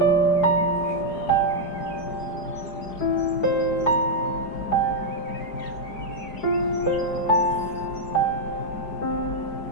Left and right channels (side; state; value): right; late; 4.8 ms